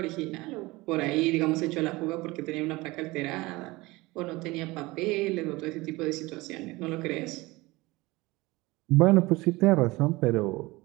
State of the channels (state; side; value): quieter; left; 21.5 dB